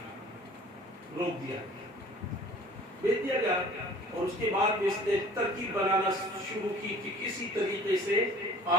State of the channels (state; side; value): normal; both; correlation 0.48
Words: روک دیا، بھیج دیا گیا. اور اس کے بعد اس نے ترکیب بنانا شروع کی کہ کسی طریقے سے